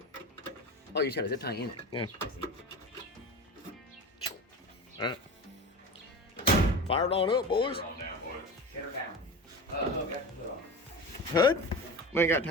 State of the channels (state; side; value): normal; both; correlation 0.30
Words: Oh, you just got a zip tie in it. Yeah. Alright. Fire it on up, boys. Set her down. Okay. Hood? We ain't got